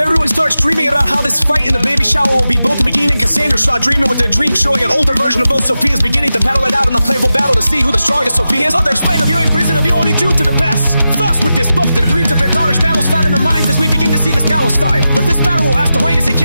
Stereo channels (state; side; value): inverted; both; correlation -0.92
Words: starts dreaming about how this fight in the baby shower will be, both Magine and Cassandra start dreaming with their dream, showing an older version of both Sophias beginning to battle it out in a playful battle to see who the strongest Sophia is. Others explain of you in prison of you only due to the best. Thus with this book that agrees of their daughters' battles found in their minds as we begin to see this battle start. But this battle will have to wait as it